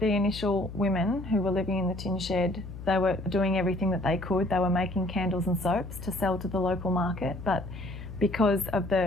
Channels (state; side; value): noise; left; hum, 11 dB below the sound